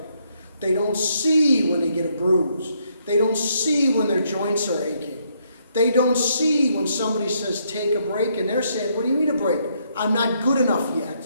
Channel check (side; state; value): both; inverted; correlation -0.73